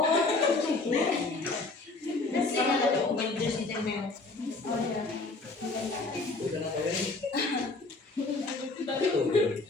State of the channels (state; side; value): quieter; right; 3.4 dB